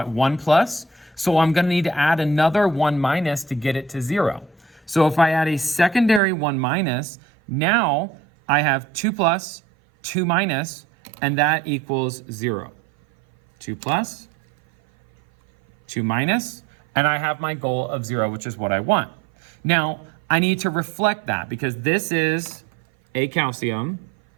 at 1 plus. So I'm going to need to add another 1 minus to get it to 0. So if I add a secondary 1 minus, now I have 2 plus, 2 minus, and that equals 0. 2 plus, 2 minus, and I have my goal of 0, which is what I want. Now, I need to reflect that because this is a calcium,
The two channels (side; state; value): left; drops out; at 6.2 s